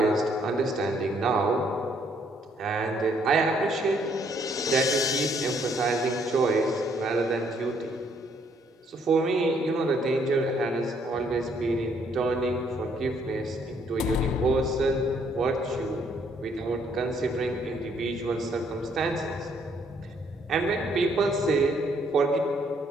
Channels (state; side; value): normal; both; correlation 0.68